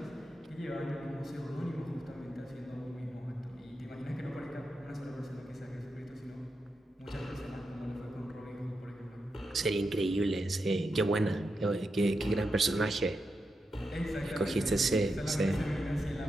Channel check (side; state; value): both; normal; correlation 0.87